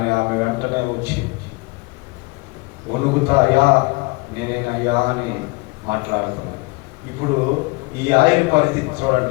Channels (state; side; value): quieter; right; 26.5 dB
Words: ఆమె వెంటనే వచ్చి వణుకుతా, అయ్యా నేనేనయ్యా అని మాట్లాడుతున్నాను. ఇప్పుడు ఈ ఆయన పరిస్థితి